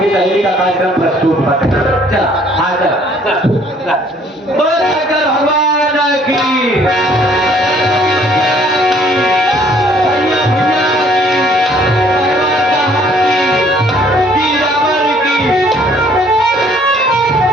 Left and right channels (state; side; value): normal; both; correlation 0.60